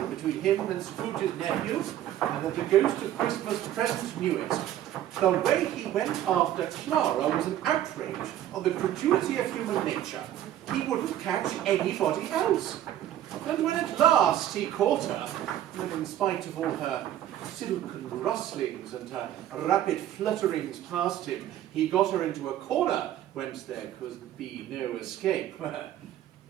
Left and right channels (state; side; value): quieter; left; 12.1 dB